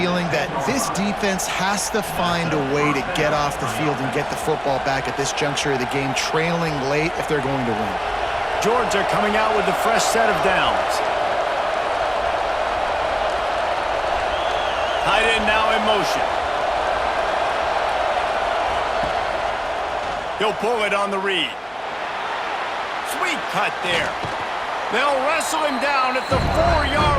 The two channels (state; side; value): identical; both; correlation 1.00